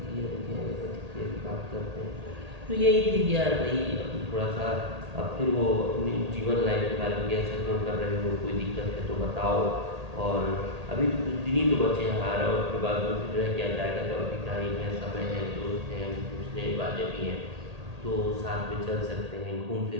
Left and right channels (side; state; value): left; late; 1.8 ms